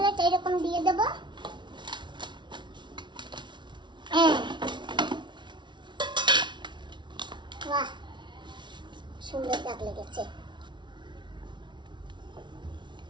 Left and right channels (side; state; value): left; late; 0.23 ms